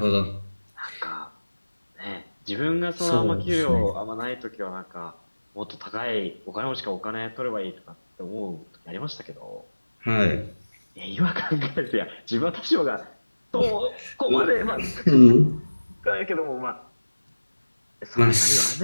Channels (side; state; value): both; inverted; correlation -1.00